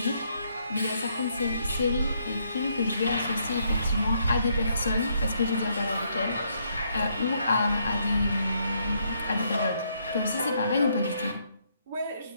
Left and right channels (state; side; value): inverted; both; correlation -0.73